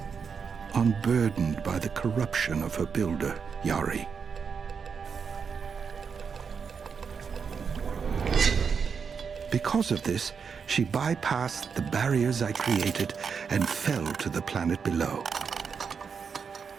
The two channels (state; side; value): quieter; left; 6.1 dB